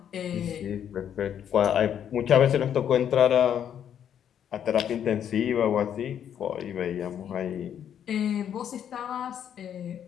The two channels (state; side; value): quieter; right; 9.3 dB